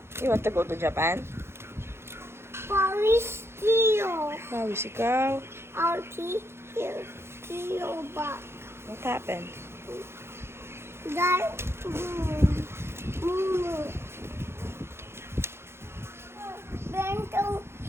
You want to go to Japan? Paris Tio. Pawis ikaw. Alti. Here. Tio back. What happened? That. Mumu. Bento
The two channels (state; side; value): late; left; 0.12 ms